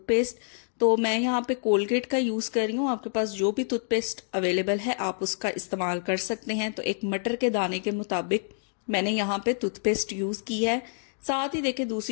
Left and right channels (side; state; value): right; silent; digital silence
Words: तो मैं यहाँ पे कोलगेट का यूज कर रही हूँ, आपके पास जो भी टूथपेस्ट अवेलेबल है आप उसका इस्तेमाल कर सकते हैं। तो एक मटर के दाने के मुताबिक मैंने यहाँ पे टूथपेस्ट यूज की है। साथ ही देखिए